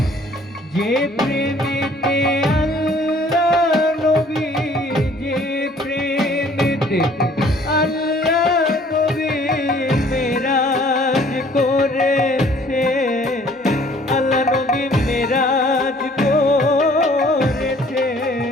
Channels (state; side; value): normal; both; correlation 0.56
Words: যে প্রেমেতে আল্লাহ নবী, যে প্রেমেতে আল্লাহ নবী মেরাজ করেছে, আল্লাহ নবী মেরাজ করেছে।